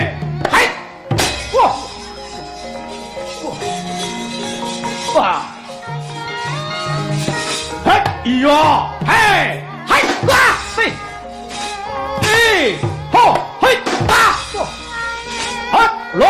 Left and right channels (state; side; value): identical; both; correlation 1.00